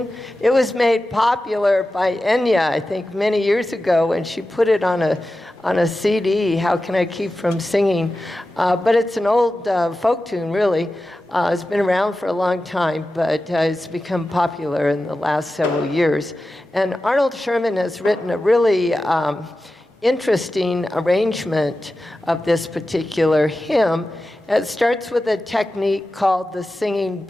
It was made popular by Enya, I think, many years ago, and she put it on a CD, How Can I Keep from Singing? But it's an old folk tune, really. It's been around for a long time, but it's become popular in the last several years. And Arnold Sherman has written a really interesting arrangement of this particular hymn. It starts with a technique called the singing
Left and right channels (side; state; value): both; normal; correlation 0.93